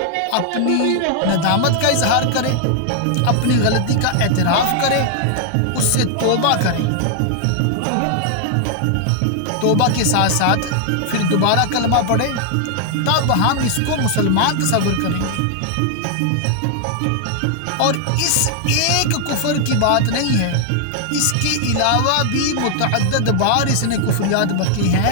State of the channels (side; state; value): both; different; correlation 0.00